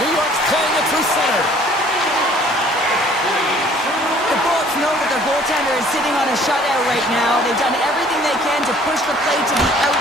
York's playing it through center. The Bolts know that their goaltender is sitting on a shutout right now. They've done everything they can to push the play to the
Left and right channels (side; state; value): both; normal; correlation 0.55